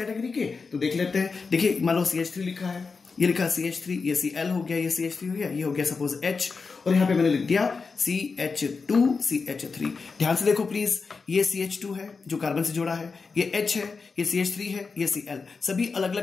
के, तो देख लेते हैं। देखिए मान लो CH3 लिखा है, ये लिखा CH3, ये Cl हो गया, ये CH3 हो गया, ये हो गया सपोज H, और यहां पे मैंने लिख दिया CH2 CH3। ध्यान से देखो प्लीज, ये CH2 है जो कार्बन से जुड़ा है, ये H है, ये CH3 है, ये Cl, सभी अलग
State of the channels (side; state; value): right; quieter; 4.7 dB